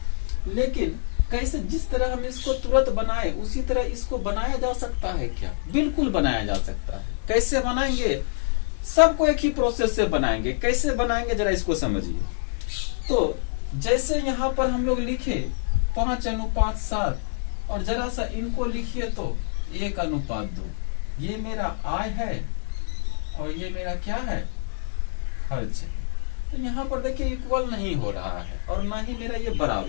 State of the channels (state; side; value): silent; right; digital silence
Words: लेकिन कैसे, जिस तरह हम इसको तुरंत बनाए उसी तरह इसको बनाया जा सकता है क्या, बिल्कुल बनाया जा सकता है। कैसे बनाएंगे, सबको एक ही प्रोसेस से बनाएंगे। कैसे बनाएंगे जरा इसको समझिए। तो जैसे यहाँ पर हम लोग लिखे 5:7, और जरा सा इनको लिखिए तो 1:2। ये मेरा आय है और ये मेरा क्या है, खर्च है। तो यहाँ पर देखिए इक्वल नहीं हो रहा है और ना ही मेरा ये